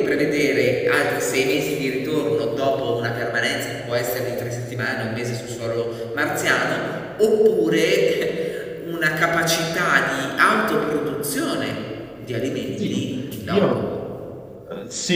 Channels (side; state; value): both; identical; correlation 1.00